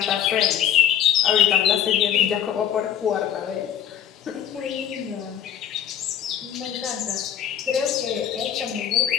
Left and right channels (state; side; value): quieter; right; 9.8 dB